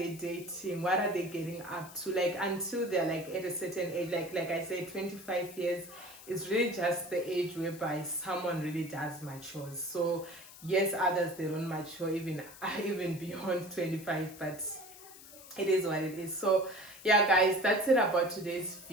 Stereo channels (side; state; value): left; noise; hiss, 18 dB below the sound